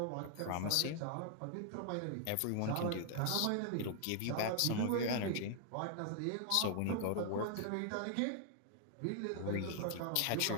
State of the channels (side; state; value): both; different; correlation 0.00